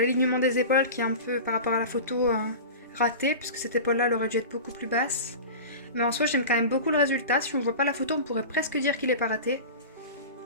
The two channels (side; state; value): both; inverted; correlation -0.32